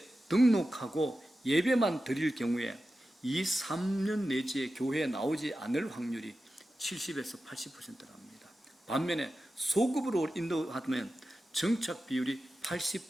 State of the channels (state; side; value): normal; both; correlation 0.93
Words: 등록하고 예배만 드릴 경우에 2, 3년 내지에 교회에 나오지 않을 확률이 70에서 80%랍니다. 반면에 소급으로 인도하면 정착 비율이